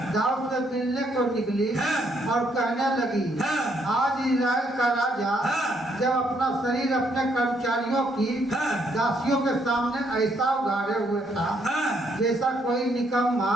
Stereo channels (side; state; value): both; normal; correlation 0.72